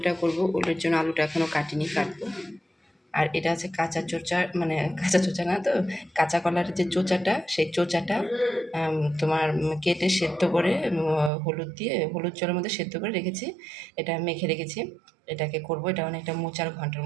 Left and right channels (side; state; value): left; drops out; at 11.3 s